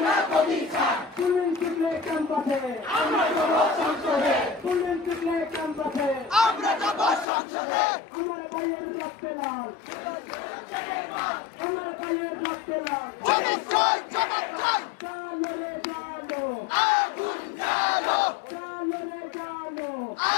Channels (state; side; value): drops out; right; at 7.2 s